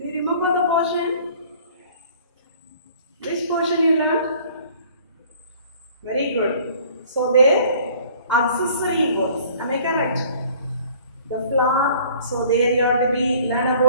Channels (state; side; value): inverted; both; correlation -0.53